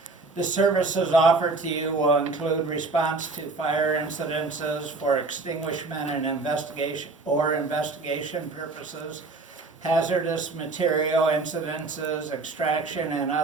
The services offered to you will include response to fire incidences for extinguishment and investigation purposes, hazardous material incidences, extraction, and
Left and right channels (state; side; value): quieter; left; 3.6 dB